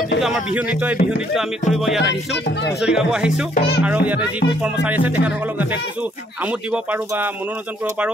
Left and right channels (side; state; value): both; normal; correlation 0.67